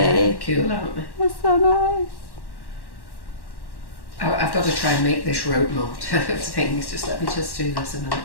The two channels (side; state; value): right; late; 1.1 ms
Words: Yeah, cool, haven't they? That's so nice. I've got to try and make this rope mold of things. Just let me just do this a minute.